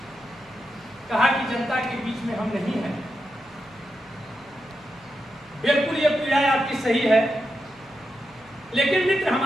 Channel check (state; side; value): noise; right; hum, 30 dB below the sound